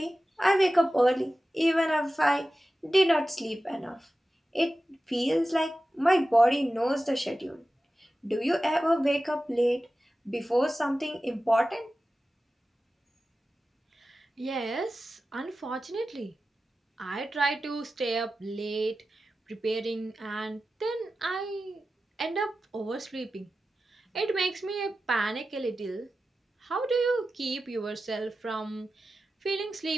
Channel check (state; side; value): normal; both; correlation 0.94